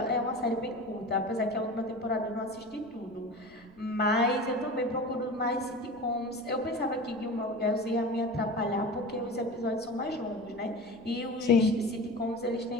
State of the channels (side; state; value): left; noise; rumble, 29 dB below the sound